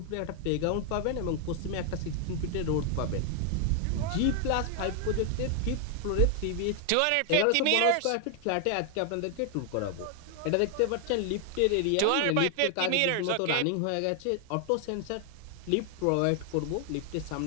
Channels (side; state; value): both; different; correlation 0.00